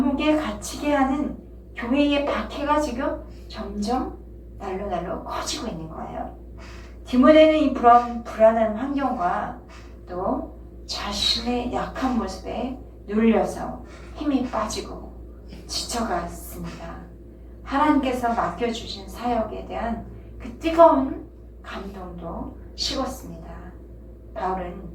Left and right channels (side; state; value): both; identical; correlation 1.00